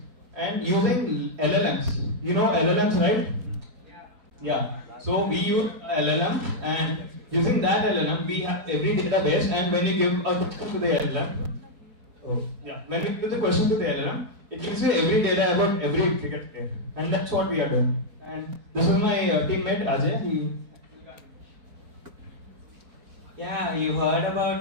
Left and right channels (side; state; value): left; late; 4.4 ms